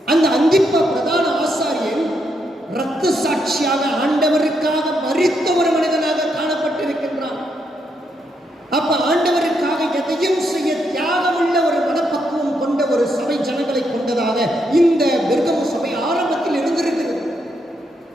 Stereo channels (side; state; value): both; normal; correlation 0.79